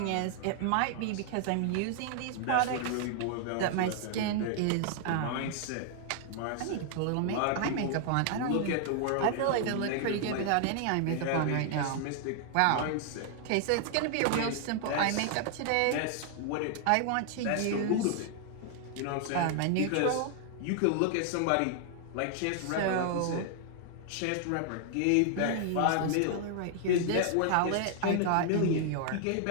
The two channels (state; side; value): different; both; correlation 0.00